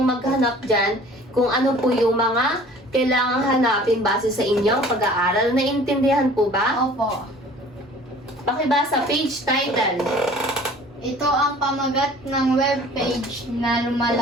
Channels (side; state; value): both; normal; correlation 0.49